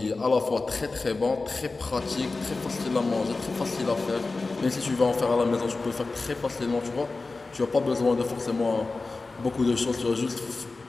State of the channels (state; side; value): quieter; right; 3.6 dB